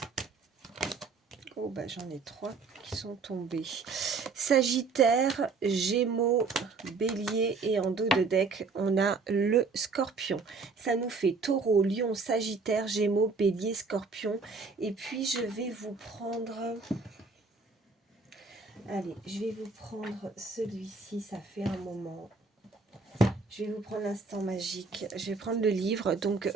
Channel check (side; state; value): left; quieter; 4.4 dB